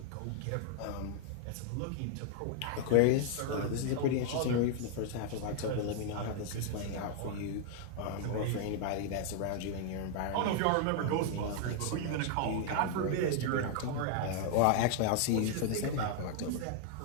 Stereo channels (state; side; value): different; both; correlation 0.00